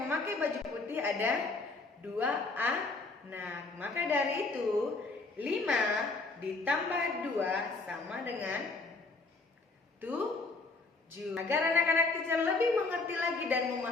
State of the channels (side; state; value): right; quieter; 3.6 dB